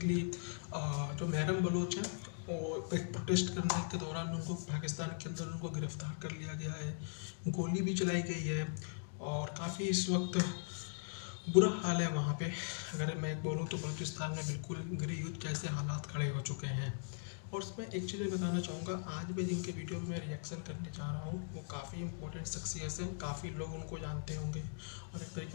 जो महरम बलोच हैं, वो एक प्रोटेस्ट करने के दौरान उनको पाकिस्तान के अंदर उनको गिरफ्तार कर लिया गया है, गोली भी चलाई गई है और काफ़ी इस वक्त बुरा हाल है वहाँ पे। अगर मैं बोलूँ तो बलूचिस्तान में बिल्कुल गृह युद्ध जैसे हालात खड़े हो चुके हैं। और उसमें एक चीज़ मैं बताना चाहूँगा, आज मैं जिनके वीडियो में मैं रिएक्शन करने जा रहा हूँ वो काफ़ी इंपॉर्टेंट शख्सियत हैं, काफ़ी लोग उनको जानते होंगे और एक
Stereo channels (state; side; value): silent; right; digital silence